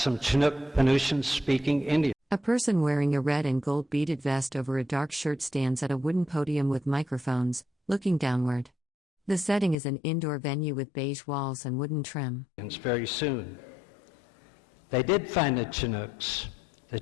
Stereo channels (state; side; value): drops out; right; at 9.8 s